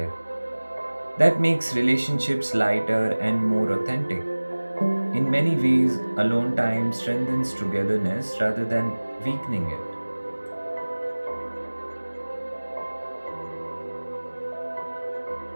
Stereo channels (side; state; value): both; inverted; correlation -1.00